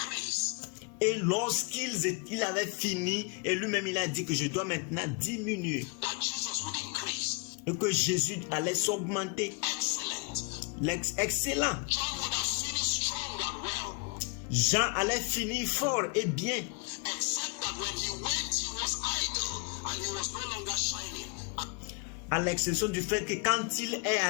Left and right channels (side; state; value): right; quieter; 33.0 dB